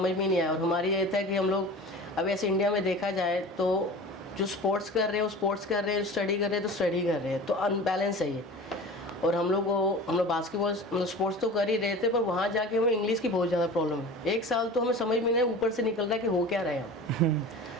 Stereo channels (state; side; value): normal; both; correlation 0.37